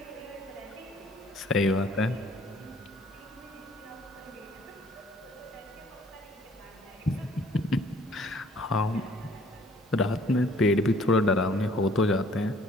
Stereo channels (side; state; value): both; normal; correlation 0.58